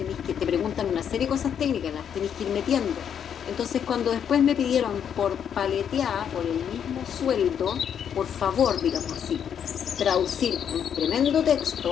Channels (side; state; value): right; quieter; 8.4 dB